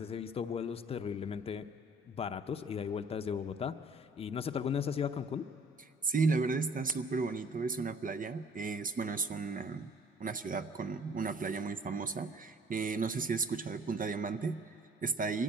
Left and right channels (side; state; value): both; normal; correlation 0.54